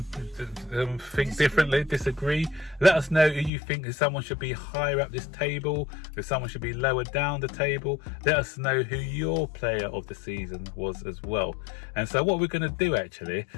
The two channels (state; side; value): drops out; right; at 3.5 s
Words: differently, disagree. Let us know who you think someone should be higher up this table, if someone should be lower down the table. Let us know who your player of the season was as well. And so what we're going to do actually,